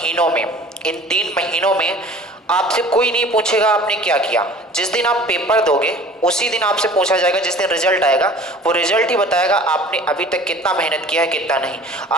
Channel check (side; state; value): both; normal; correlation 0.45